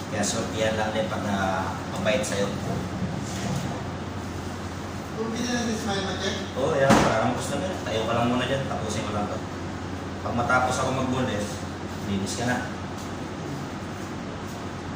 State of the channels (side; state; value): both; identical; correlation 1.00